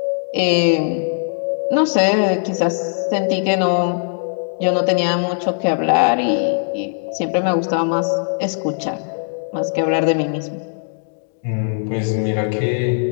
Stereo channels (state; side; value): silent; right; digital silence